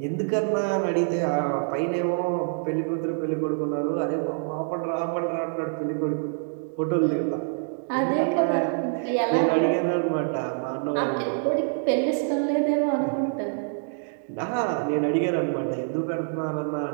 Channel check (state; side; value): silent; left; digital silence